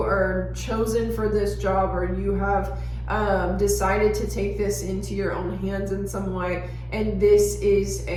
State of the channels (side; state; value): both; identical; correlation 1.00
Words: are chosen for this job, or you have decided to take this into your own hands in some way, and this is